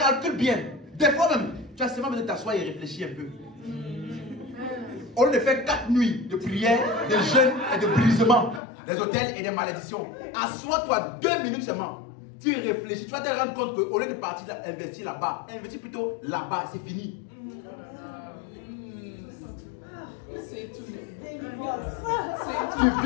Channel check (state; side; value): drops out; right; at 8.6 s